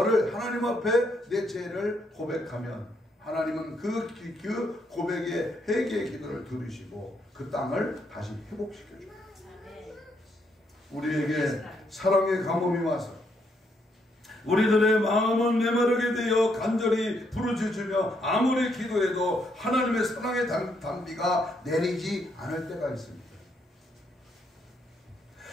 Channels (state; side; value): normal; both; correlation 0.75